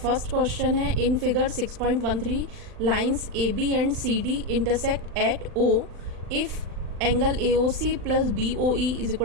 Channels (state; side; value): late; left; 39 ms